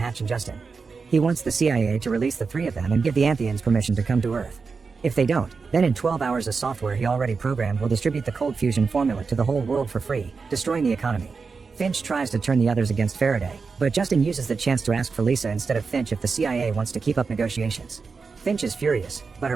and Justin. He wants the CIA to release the 3 of them and give the Antheans permission to come to Earth. If they don't, then in 12 hours a software he already programmed will distribute the cold fusion formula to the whole world for free, destroying the economy. Finch tries to turn the others against Faraday, but Justin uses the chance to ask for Lisa instead of Finch if the CIA wants to keep up negotiations. Finch is furious, but her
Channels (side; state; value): left; quieter; 4.9 dB